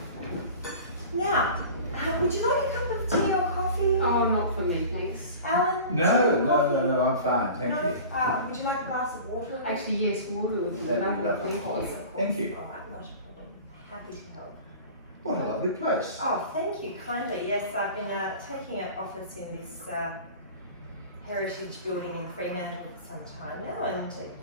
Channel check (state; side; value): inverted; both; correlation -0.39